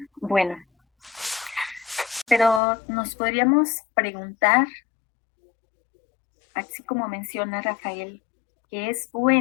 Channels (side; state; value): right; drops out; at 2.6 s